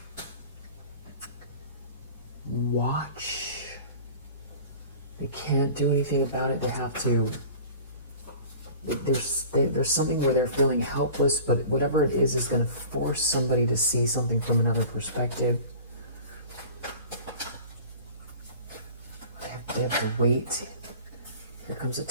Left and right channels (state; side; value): inverted; both; correlation -0.42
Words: watch. They can't do anything about it. They have to. There's something where they're feeling helpless, but whatever it is going to force somebody to see something from another perspective. They have to wait. Here comes a